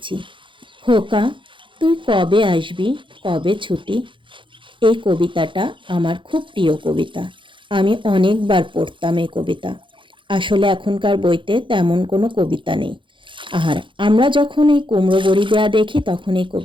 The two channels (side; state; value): left; late; 0.24 ms